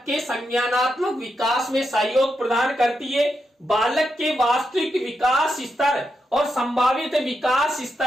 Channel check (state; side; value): normal; both; correlation 0.85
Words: के संज्ञानात्मक विकास में सहयोग प्रदान करती है। बालक के वास्तविक विकास स्तर और संभावित विकास